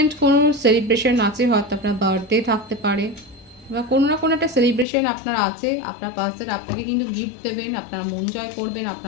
কোনো সেলিব্রেশন আছে, হয়তো আপনার বার্থডে থাকতে পারে, বা কোনো না কোনো একটা সেলিব্রেশন আপনার আছে, আপনার পার্সন আপনাকে কিন্তু গিফট দেবেন, আপনার মন জয় করবেন,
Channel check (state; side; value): drops out; right; at 4.9 s